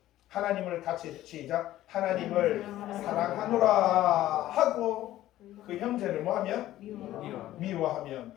하나님을 같이 시작. 하나님을 사랑하노라 하고 그 형제를 뭐하면? 미워하면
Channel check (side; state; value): right; quieter; 14.3 dB